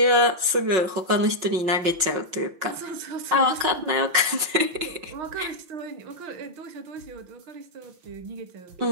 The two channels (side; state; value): left; late; 5.4 ms